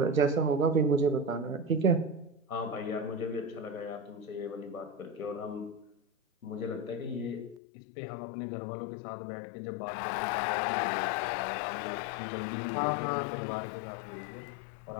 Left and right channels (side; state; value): right; drops out; at 7.6 s